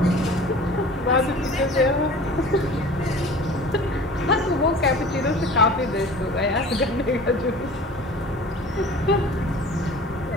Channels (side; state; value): both; normal; correlation 0.42